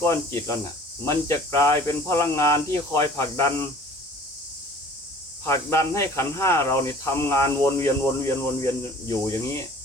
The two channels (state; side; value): normal; both; correlation 0.48